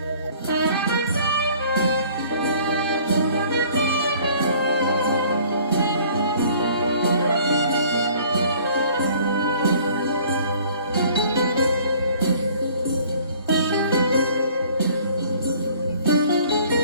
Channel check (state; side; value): inverted; both; correlation -0.54